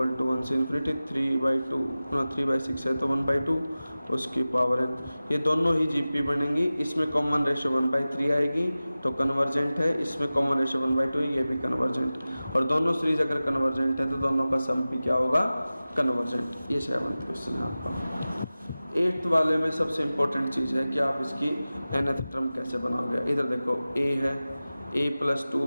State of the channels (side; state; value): both; inverted; correlation -0.96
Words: to 1 से इन्फिनिटी 3/6 है तो 1/2 उसकी पावर n। ये दोनों ही जीपी बनेंगी, इसमें कॉमन रेशो 1/3 आएगी तो कन्वर्जेंट है, इसमें कॉमन रेशो 1/2 है, ये भी कन्वर्जेंट। और दोनों सीरीज अगर कन्वर्जेंट है तो दोनों का सम भी क्या होगा, कन्वर्जेंट। ये 7th क्वेश्चन है आपका। 8th वाले में सबसे इम्पोर्टेंट चीज़ है कि आप इसकी nth टर्म कैसे बनाओगे। इधर देखो a है, a प्लस